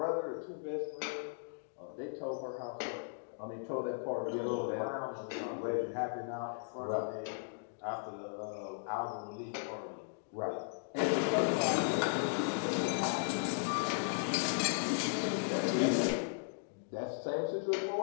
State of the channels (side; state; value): right; silent; digital silence